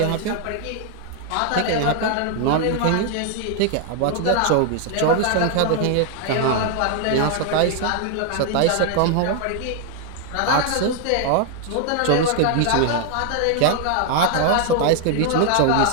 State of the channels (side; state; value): both; different; correlation 0.00